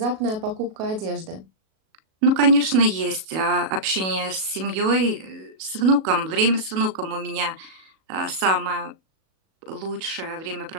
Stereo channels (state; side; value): late; left; 37 ms